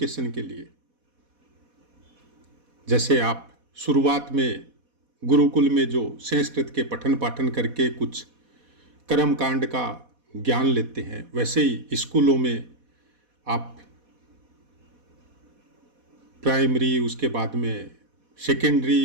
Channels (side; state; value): left; late; 4.1 ms